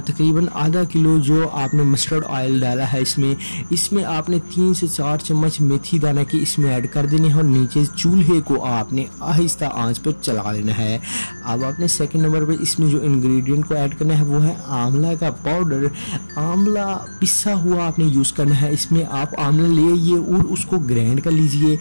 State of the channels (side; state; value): both; inverted; correlation -1.00